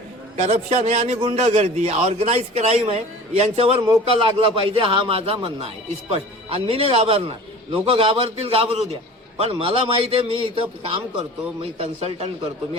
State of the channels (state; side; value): normal; both; correlation 0.41